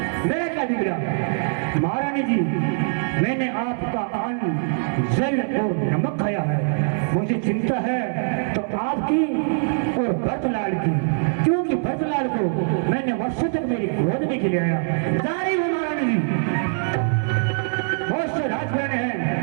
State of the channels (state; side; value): silent; left; digital silence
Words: मेरा क्या बिगड़ा? महारानी जी, मैंने आपका अन्न जल और नमक खाया है। मुझे चिंता है तो आपकी और भरतलाल की, क्योंकि भरतलाल को मैंने वर्षों तक मेरी गोद में खिलाया। जारी हूँ महारानी जी, बहुत से राजघराने